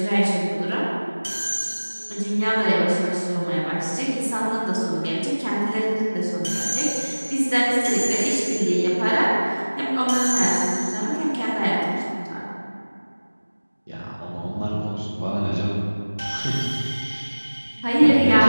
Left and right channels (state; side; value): inverted; both; correlation -1.00